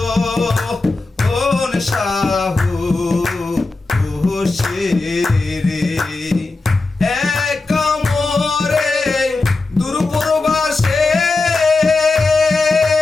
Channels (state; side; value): quieter; right; 3.5 dB